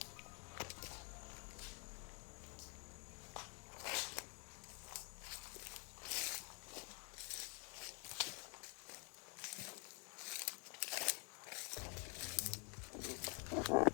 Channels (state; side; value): quieter; right; 36.8 dB